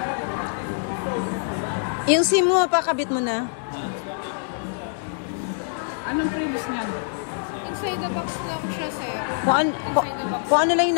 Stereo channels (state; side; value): silent; right; digital silence